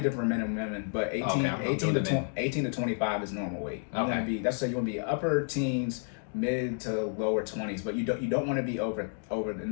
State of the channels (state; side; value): silent; right; 57 dB below the other